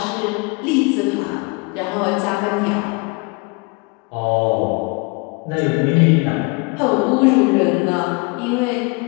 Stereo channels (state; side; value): quieter; right; 28.9 dB